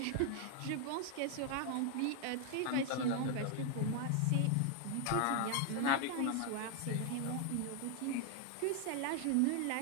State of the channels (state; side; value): different; both; correlation 0.00